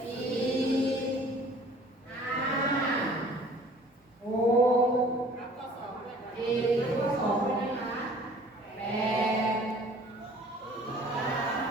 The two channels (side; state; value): both; normal; correlation 0.51